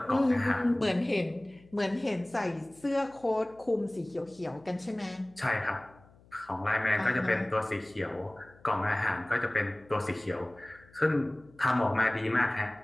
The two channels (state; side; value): noise; left; hum, 27 dB below the sound